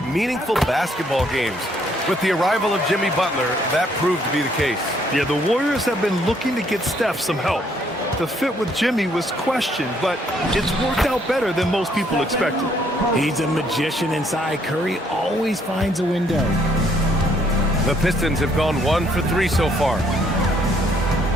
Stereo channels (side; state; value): both; normal; correlation 0.67